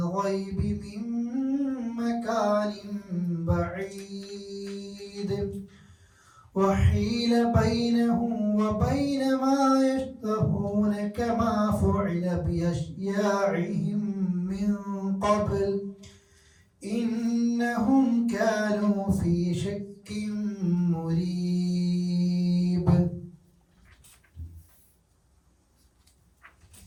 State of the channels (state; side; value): identical; both; correlation 1.00